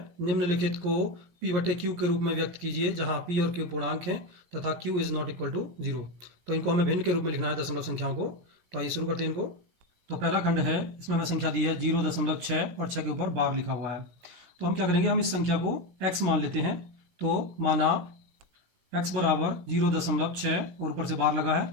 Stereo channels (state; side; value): late; left; 17 ms